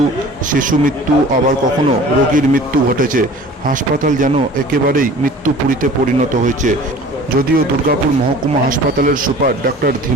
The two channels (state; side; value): normal; both; correlation 0.44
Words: শিশু মৃত্যু, আবার কখনো রোগীর মৃত্যু ঘটেছে। হাসপাতাল যেন একেবারেই মৃত্যুপুরীতে পরিণত হয়েছে। যদিও দুর্গাপুর মহকুমা হাসপাতালের সুপার ডাক্তার